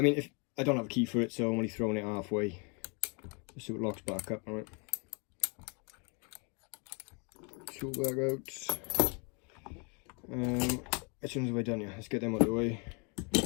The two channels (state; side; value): quieter; right; 34.3 dB